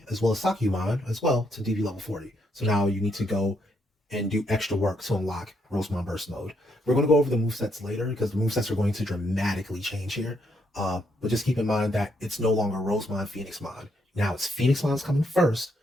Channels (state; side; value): normal; both; correlation 0.75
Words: as well as Sakyumon as well to DV level 40. So now you need to go and do extra work to unlock Rosemon Burst Mode. We're going to go over the movesets later because the movesets are going to dramatically change here. But just keep in mind that it's no longer Rosemon, Phoenixmon. Now it's Phoenixmon's coming first.